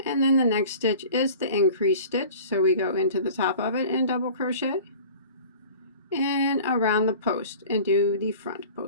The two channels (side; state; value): both; inverted; correlation -0.43